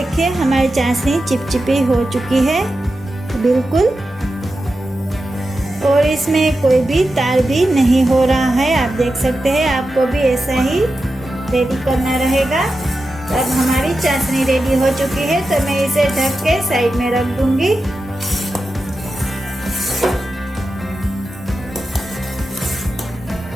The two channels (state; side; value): normal; both; correlation 0.91